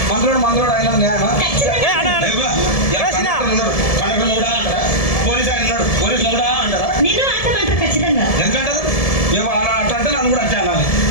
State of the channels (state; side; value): late; right; 1.7 ms